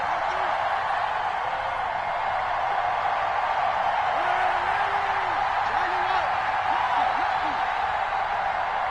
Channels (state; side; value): identical; both; correlation 1.00